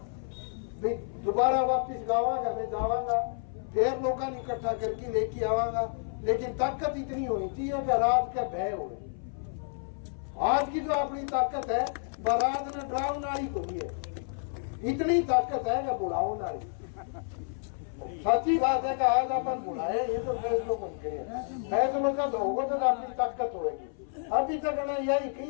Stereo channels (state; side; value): silent; right; 55 dB below the other